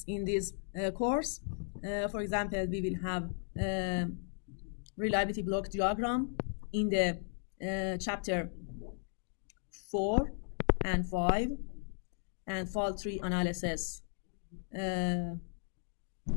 in this course. For example, we will have reliability block diagram in the chapter 4 and 5, and fault tree analysis.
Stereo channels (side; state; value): right; silent; digital silence